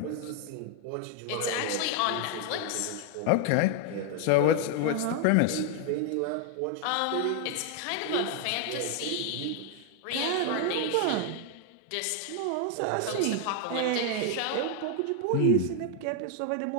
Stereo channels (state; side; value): different; both; correlation 0.00